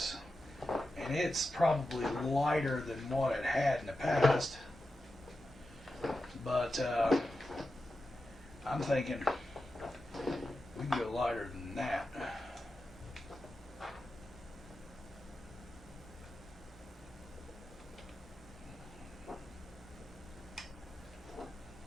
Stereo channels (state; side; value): normal; both; correlation 0.91